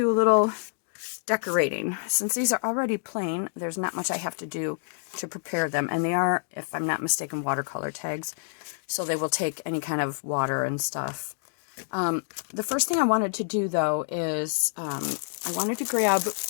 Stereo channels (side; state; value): right; silent; digital silence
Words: a little decorating. Since these are already plain, there's not much I have to do to prepare them. And they are, if I'm not mistaken, watercolor tags. So they will take any kind of water and stuff. The first thing I wanted to do, though, is I wanted to grab